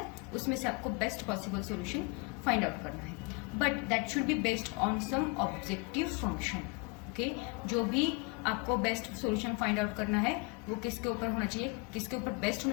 उसमें से आपको best possible solution find out करना है. But that should be based on some objective function. Okay, जो भी आपको बेस्ट सॉल्यूशन फाइंड आउट करना है वो किसके ऊपर होना चाहिए, किसके ऊपर बेस्ट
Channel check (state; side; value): quieter; right; 28.2 dB